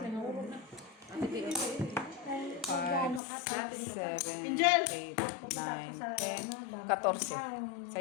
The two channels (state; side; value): drops out; right; at 3.2 s